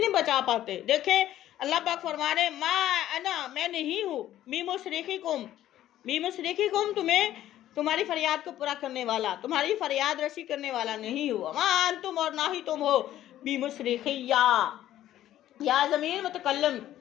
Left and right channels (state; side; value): quieter; right; 12.9 dB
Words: بچا پاتے۔ دیکھیں اللہ پاک فرما رہے ما انا، میں نہیں ہوں، مصرخکم تمہاری فریاد کو پورا کرنے والا، تمہاری فریاد رسی کرنے والا نہیں ہوا، ما انتم اور نہ ہی تم ہو بمصرخیہ، یا ضمیر متکلم،